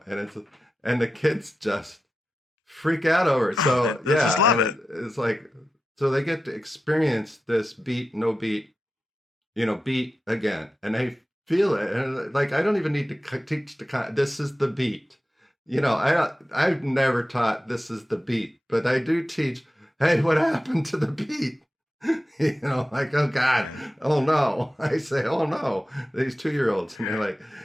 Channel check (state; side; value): normal; both; correlation 0.92